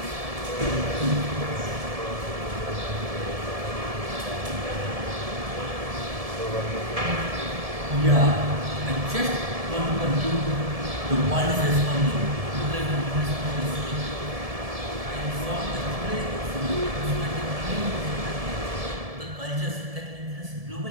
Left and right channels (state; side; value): late; left; 1.7 ms